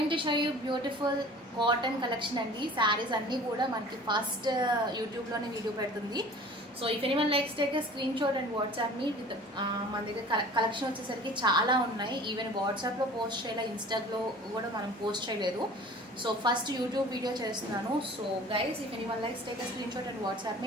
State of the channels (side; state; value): both; normal; correlation 0.45